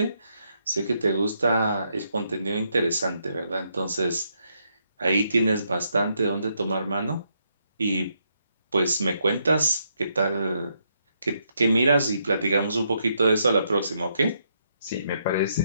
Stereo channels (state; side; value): inverted; both; correlation -0.77